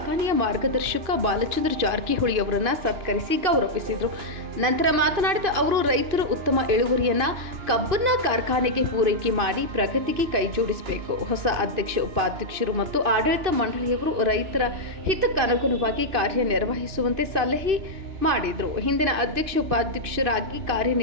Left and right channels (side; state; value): left; late; 2.6 ms